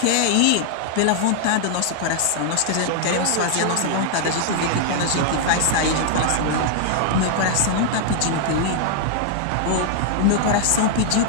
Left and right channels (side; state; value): both; different; correlation 0.00